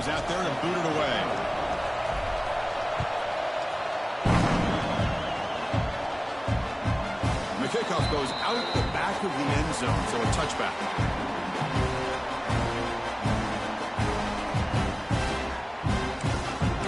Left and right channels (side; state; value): both; identical; correlation 1.00